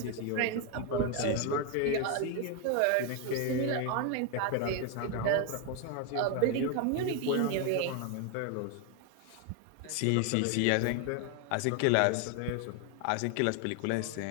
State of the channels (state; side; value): different; both; correlation 0.01